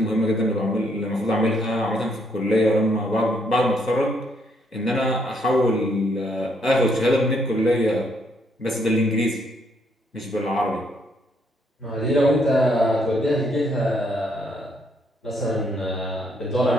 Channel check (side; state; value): both; normal; correlation 0.72